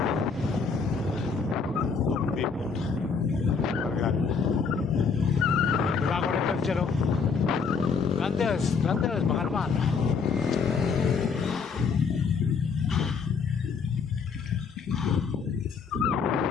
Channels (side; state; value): right; quieter; 5.4 dB